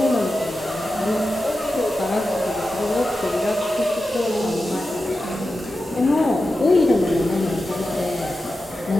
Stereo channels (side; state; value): both; normal; correlation 0.92